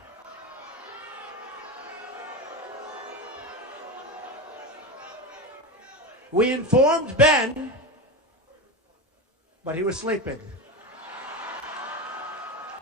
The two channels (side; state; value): both; normal; correlation 0.20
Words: We informed Ben, but he was sleeping.